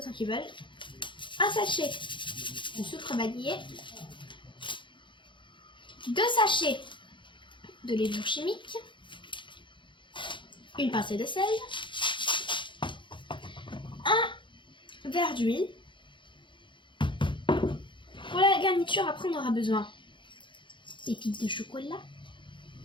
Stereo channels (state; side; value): late; right; 0.23 ms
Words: qu'ils veulent. Un sachet de sucre vanillé. 2 sachets de levure chimique, une pincée de sel, un verre d'huile. Pour la garniture, après on aura besoin des pépites de chocolat.